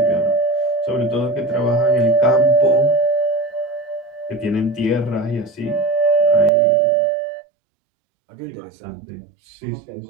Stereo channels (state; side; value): drops out; left; at 6.5 s